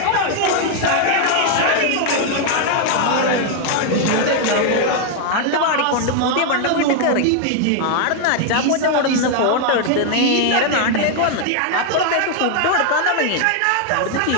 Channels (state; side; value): different; both; correlation 0.00